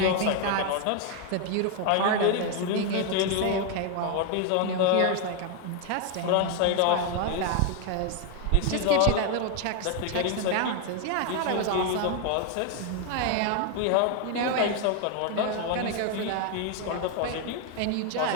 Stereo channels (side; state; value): both; different; correlation 0.01